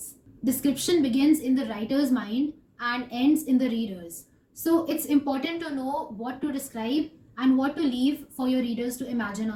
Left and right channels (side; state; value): both; identical; correlation 1.00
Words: Description begins in the writer's mind and ends in the reader's. So it's important to know what to describe and what to leave for your readers to imagine